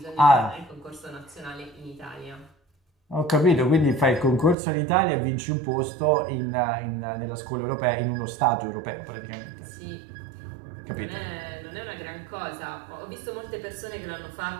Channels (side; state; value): left; drops out; at 4.5 s